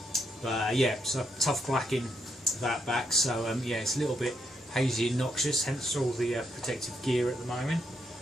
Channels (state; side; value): normal; both; correlation 0.78